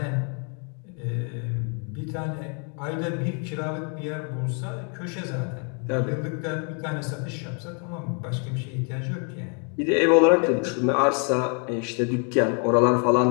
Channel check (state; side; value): quieter; right; 39.8 dB